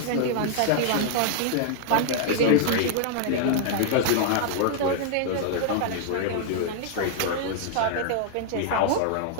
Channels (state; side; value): different; both; correlation -0.01